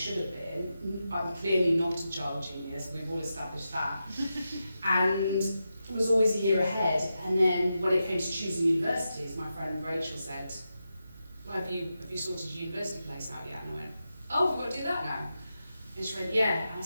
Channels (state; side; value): inverted; both; correlation -0.89